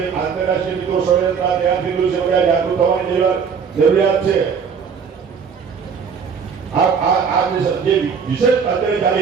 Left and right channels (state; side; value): quieter; left; 6.4 dB